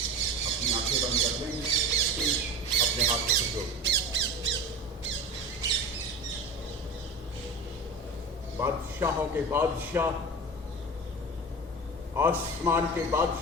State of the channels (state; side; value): normal; both; correlation 0.30